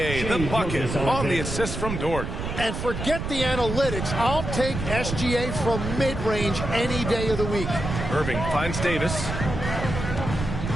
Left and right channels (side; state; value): right; noise; rumble, 5 dB below the sound